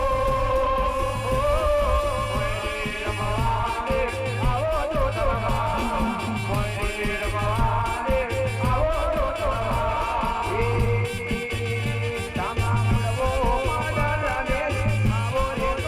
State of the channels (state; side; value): identical; both; correlation 1.00